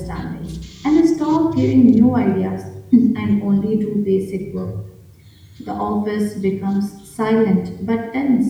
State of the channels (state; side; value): identical; both; correlation 1.00